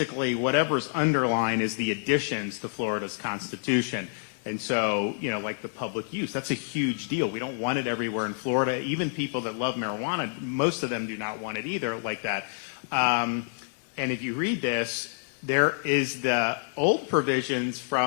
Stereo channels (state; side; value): silent; right; digital silence